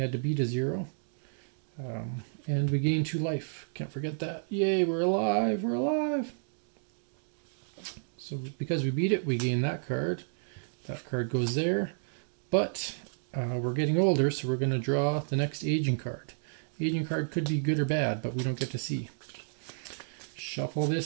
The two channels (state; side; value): silent; left; digital silence